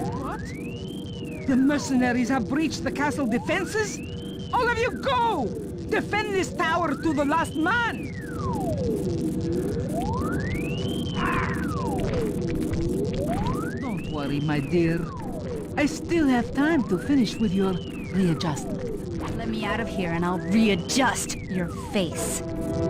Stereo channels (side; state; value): both; identical; correlation 1.00